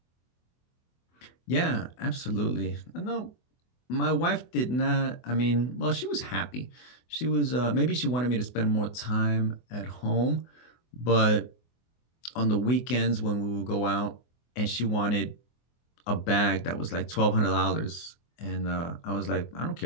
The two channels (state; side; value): late; right; 24 ms